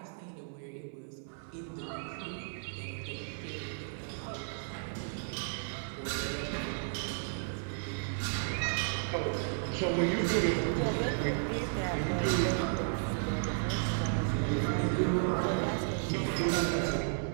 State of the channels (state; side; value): silent; left; 55 dB below the other